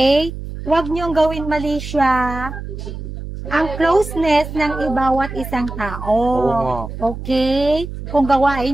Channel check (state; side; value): noise; right; hum, 9 dB below the sound